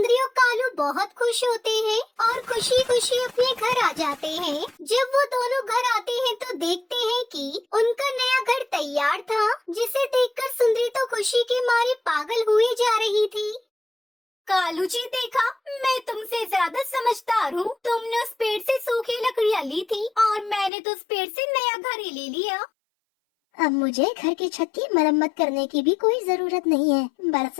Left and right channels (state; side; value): drops out; right; at 20.7 s